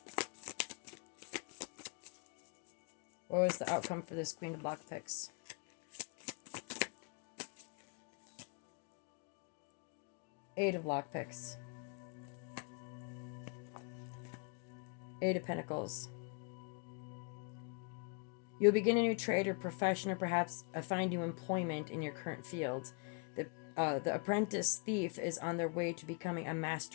What was the outcome for this Queen of Lockpicks? Eight of Lockpicks. Eight of Pentacles. You'll begin a new trade or profession, or perhaps find new employment in your current field. The apprentice thief is on their way to becoming a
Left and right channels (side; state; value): right; quieter; 35.5 dB